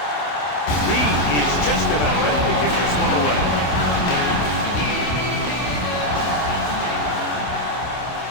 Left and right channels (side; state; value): right; late; 27 ms